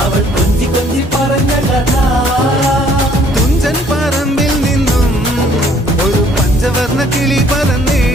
അവൾ കൊഞ്ചി കൊഞ്ചി പറഞ്ഞ കഥ തുഞ്ചൻ പറമ്പിൽ നിന്നും ഒരു പഞ്ചവർണ്ണ കിളി പറന്നേ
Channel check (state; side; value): normal; both; correlation 0.60